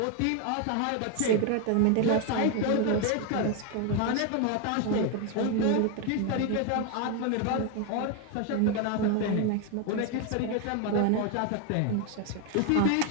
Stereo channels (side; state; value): both; different; correlation 0.01